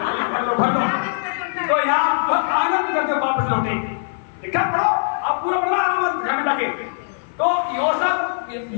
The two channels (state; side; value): silent; right; 55 dB below the other